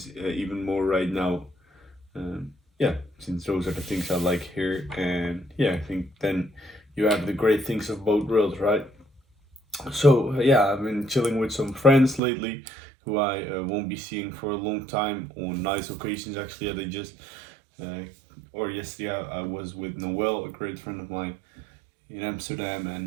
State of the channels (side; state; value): left; drops out; at 12.2 s